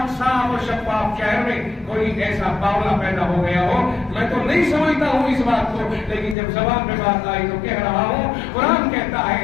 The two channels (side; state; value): right; drops out; at 6.4 s